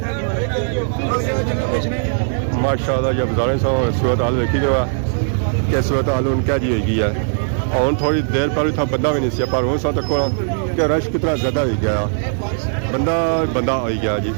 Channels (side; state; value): left; silent; digital silence